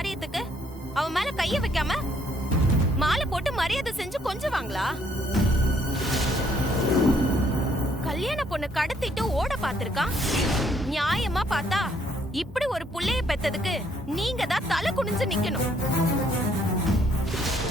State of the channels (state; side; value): normal; both; correlation 0.68